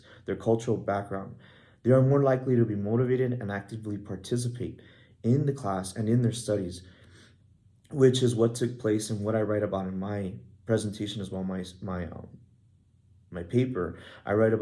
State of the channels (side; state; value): both; identical; correlation 1.00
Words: their cultural background. They are more likely to be motivated and actively participate in the class and in their studies, which is what took place and what I write about in my presentation as well, my paper. I write